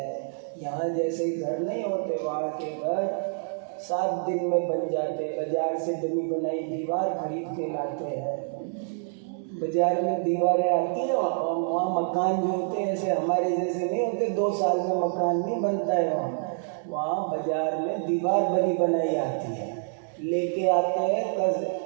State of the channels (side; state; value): left; silent; digital silence